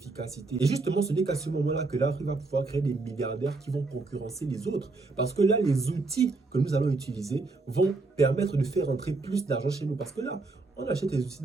Et justement, ce n'est qu'à ce moment-là que l'Afrique va pouvoir créer des milliardaires qui vont concurrencer les autres. Parce que là, les outils que nous allons utiliser vont permettre de faire entrer plus d'argent chez nous. Parce que là, on achète les outils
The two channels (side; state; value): left; quieter; 3.6 dB